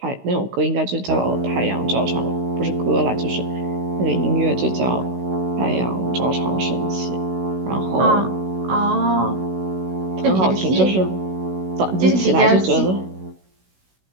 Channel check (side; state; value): left; late; 16 ms